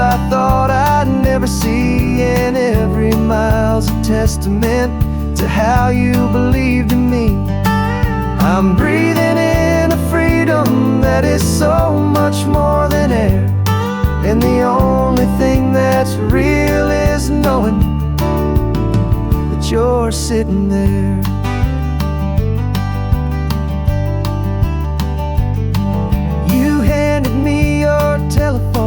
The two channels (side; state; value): both; identical; correlation 1.00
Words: thought I'd never see, and every mile's a testament to how you believed in me. I'm breathing in a freedom that is so much more than air, and the only thing that's real is knowing that you're sitting there.